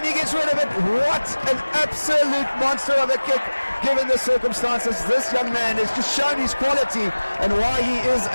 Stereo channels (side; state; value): both; inverted; correlation -1.00